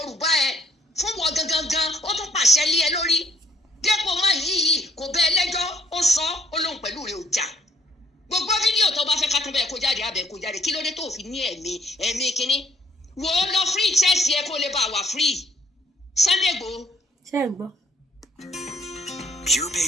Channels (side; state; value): both; normal; correlation 0.64